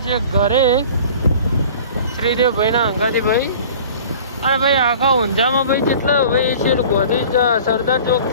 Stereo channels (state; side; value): inverted; both; correlation -0.44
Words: છીએ ઘરે શ્રીદેવ ભાઈના અંગાથી ભાઈ. અને ભાઈ આખા ઊંઝામાં ભાઈ જેટલા ભાઈ છે ગોધી સરદાર